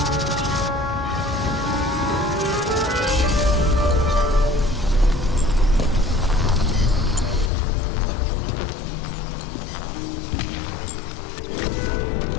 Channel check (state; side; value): drops out; right; at 7.5 s